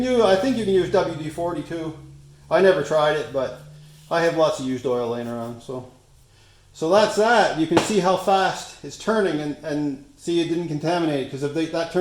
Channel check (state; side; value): identical; both; correlation 1.00